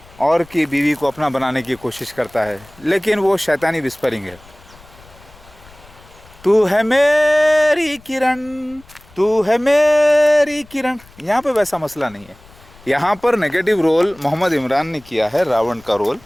اور کی بیوی کو اپنا بنانے کی کوشش کرتا ہے، لیکن وہ شیطانی وسپرنگ ہے، تو ہے میری کرن، تو ہے میری کرن۔ یہاں پہ ویسا مسئلہ نہیں ہے، یہاں پر نیگیٹو رول محمد عمران نے کیا ہے، راون کا رول،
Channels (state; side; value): noise; left; rumble, 25 dB below the sound